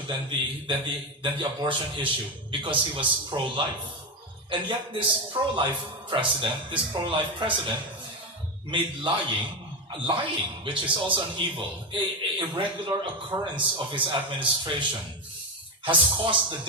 than the abortion issue, because he was pro-life. And yet this pro-life president made lying, which is also an evil, a regular occurrence of his administration, has caused the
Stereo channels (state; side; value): normal; both; correlation 0.13